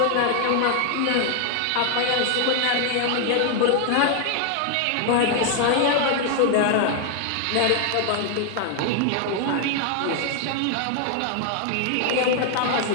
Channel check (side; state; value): both; different; correlation 0.00